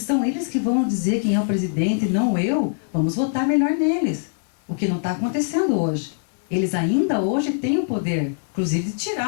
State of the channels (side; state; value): right; silent; 57 dB below the other